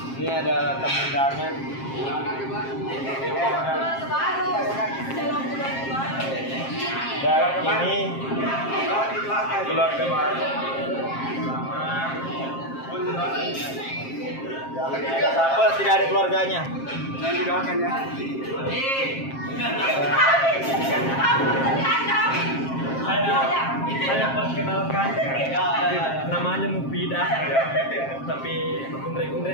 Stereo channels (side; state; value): right; late; 7.5 ms